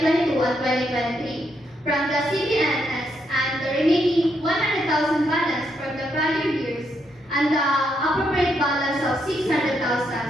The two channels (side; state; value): both; normal; correlation 0.78